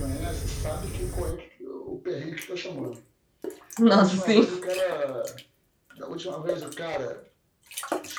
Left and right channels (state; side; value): identical; both; correlation 1.00